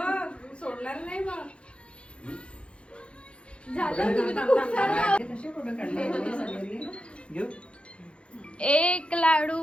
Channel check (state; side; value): late; right; 0.058 ms